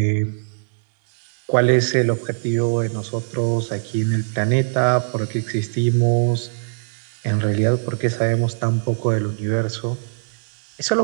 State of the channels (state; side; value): silent; left; 60 dB below the other